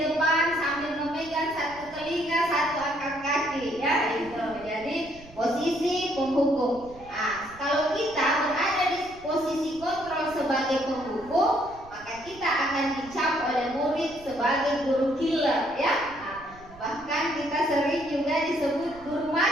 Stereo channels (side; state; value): right; noise; rumble, 21 dB below the sound